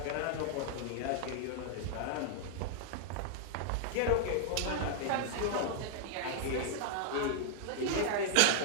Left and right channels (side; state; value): both; different; correlation -0.01